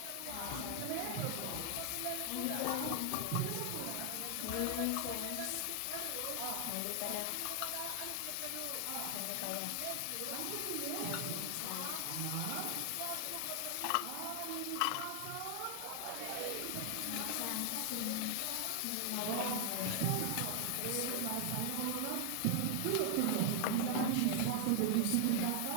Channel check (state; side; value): different; both; correlation 0.00